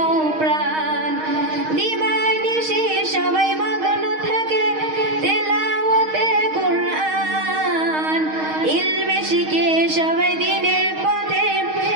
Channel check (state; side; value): late; left; 6.4 ms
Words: প্রাণ দিবানিশি সবাই মগ্ন থাকে তেলাওয়াতে কোরআন ইলমে শিখে সবাই দিনের পথে